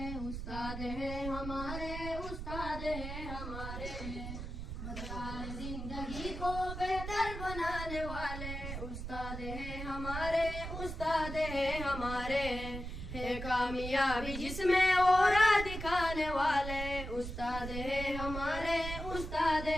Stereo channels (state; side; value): noise; right; rumble, 7 dB below the sound